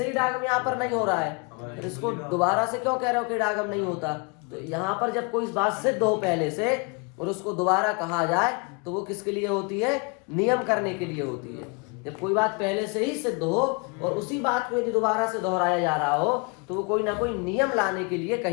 ही इडागम यहाँ पर नहीं हो रहा है, तो इसको दोबारा से क्यों कह रहे हो कि इडागम नहीं होता? तो यहाँ पर जब कोई बात सिद्ध हो पहले से और उसको दोबारा कहा जाए तो वो किसके लिए होती है? नियम करने के लिए होती है। जब कोई बात पहले से ही सिद्ध हो और उसी बात को यदि दोबारा से दोहराया जा रहा हो तो वो कोई ना कोई नियम लाने के लिए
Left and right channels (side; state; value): right; quieter; 32.1 dB